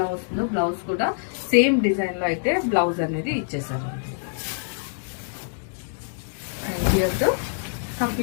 వస్తుందో బ్లౌజ్ కూడా సేమ్ డిజైన్ లో అయితే బ్లౌజ్ అనేది ఇచ్చేసారు. And here the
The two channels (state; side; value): silent; right; digital silence